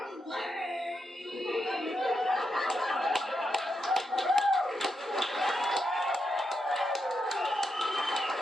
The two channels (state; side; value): normal; both; correlation 0.84